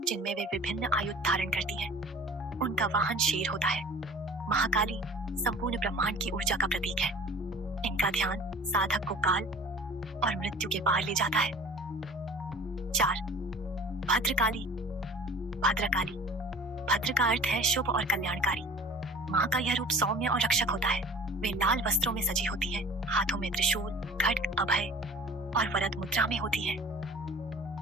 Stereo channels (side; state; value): both; normal; correlation 0.45